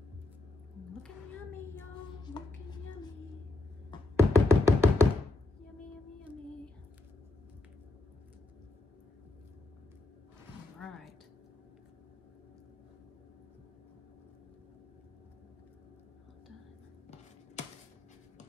All right. All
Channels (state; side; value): quieter; right; 3.2 dB